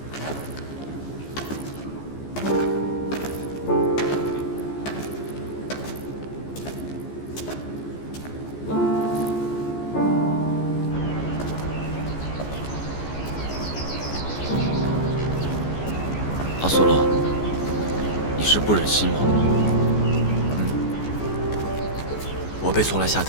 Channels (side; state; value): right; late; 14 ms